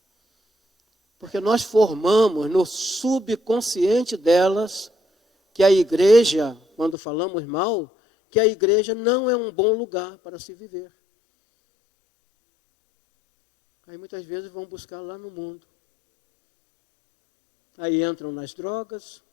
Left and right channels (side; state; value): right; drops out; at 7.0 s